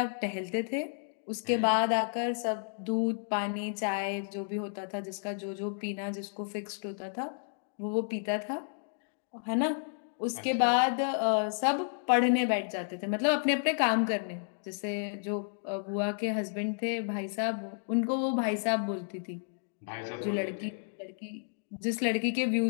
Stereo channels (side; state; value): right; silent; digital silence